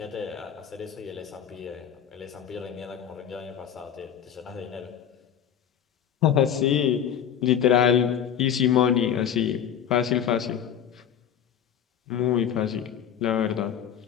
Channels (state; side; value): quieter; right; 9.1 dB